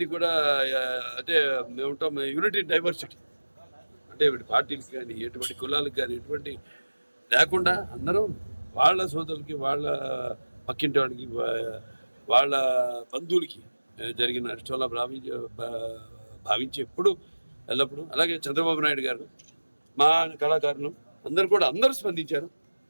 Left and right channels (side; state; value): both; inverted; correlation -1.00